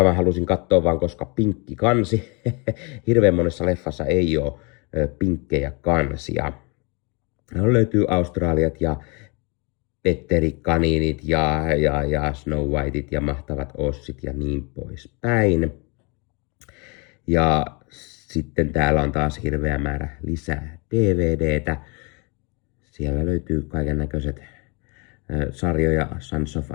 Mä halusin katsoa vaan, koska pinkki kansi. Hirveän monessa leffassa ei ole pinkkejä kansia. No, löytyy Australiat ja Petteri Kaniinit ja Snow Whiteit ja Mahtavat Ossit ja niin poispäin. Ja sitten täällä on taas hirveä määrä lisää DVDtä. Siellä löytyy kaiken näköiset sarjoja, Sons of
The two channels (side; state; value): right; quieter; 31.4 dB